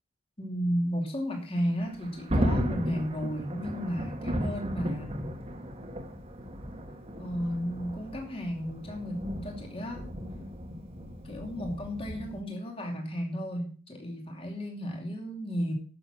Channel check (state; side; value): normal; both; correlation 0.87